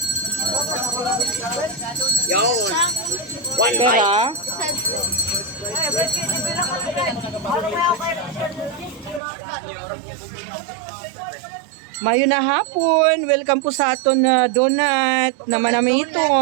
Yun. One bite. Pera? Mayo na hapon. Welcome po sa aton na donut na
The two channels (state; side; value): drops out; left; at 9.2 s